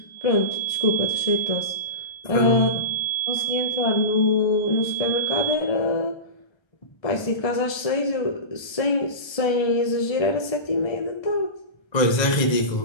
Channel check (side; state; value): right; late; 1.3 ms